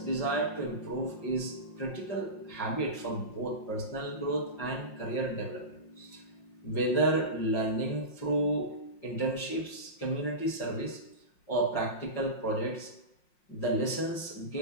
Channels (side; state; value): right; late; 5.6 ms